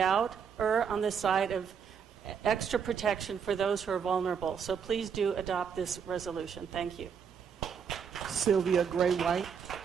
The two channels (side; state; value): left; quieter; 7.0 dB